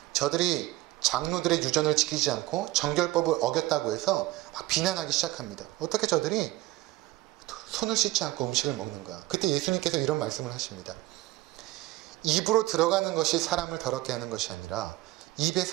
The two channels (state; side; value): quieter; left; 18.2 dB